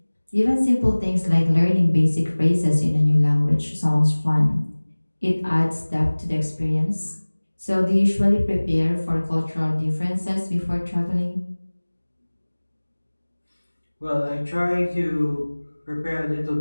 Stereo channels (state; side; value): inverted; both; correlation -1.00